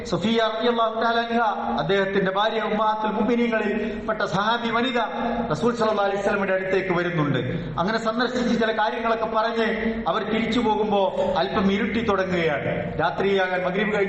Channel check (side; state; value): both; identical; correlation 1.00